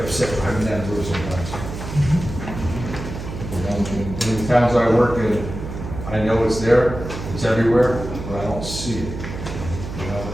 upset driving down the road sometimes. You know, in the towns I work in, I know it's there, it's everywhere, but I don't see it. You know,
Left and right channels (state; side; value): noise; right; hum, 8 dB below the sound